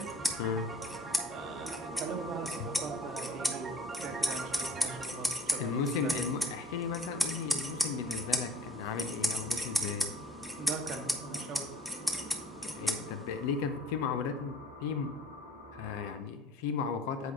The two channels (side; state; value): both; normal; correlation 0.50